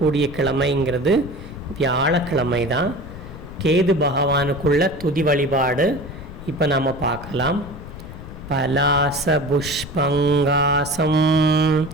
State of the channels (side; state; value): left; noise; rumble, 14 dB below the sound